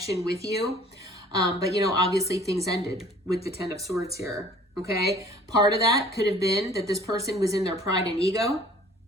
with you. But, you know, obviously things ended with the 10 of Swords here. Okay. Part of that could have been that this person was in their pride and ego.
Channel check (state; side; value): normal; both; correlation 0.52